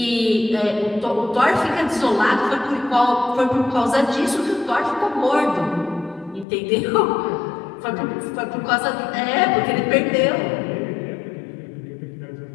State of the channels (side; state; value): right; drops out; at 6.5 s